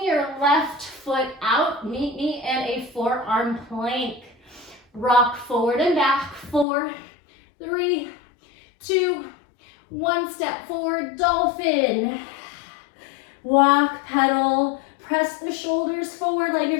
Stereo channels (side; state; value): right; drops out; at 6.7 s